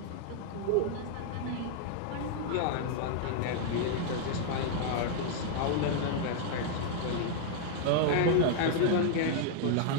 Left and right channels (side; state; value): both; different; correlation -0.01